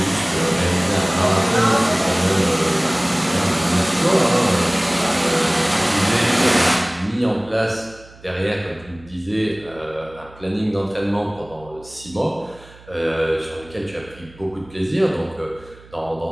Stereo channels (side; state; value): right; noise; hum, 23 dB below the sound